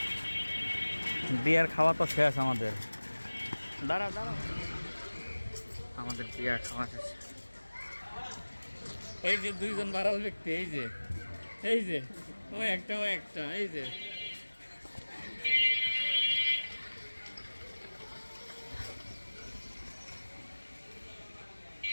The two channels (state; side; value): inverted; both; correlation -1.00